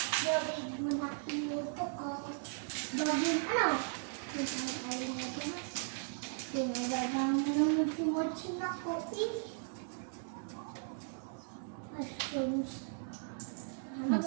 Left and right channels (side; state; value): left; silent; digital silence